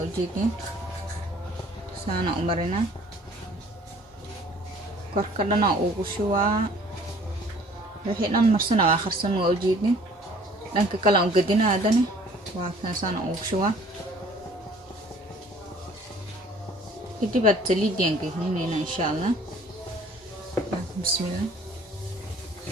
ujeedin saana u marina korka dhana ugu shubaa wixii dhan marsana waa akhrisan waa ujeedin dhanka kale aan gadinaa hadana waa kan saana ugu shubaa kadib aad saliidaan gelinayna insha Allah bismillah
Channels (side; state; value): both; normal; correlation 0.54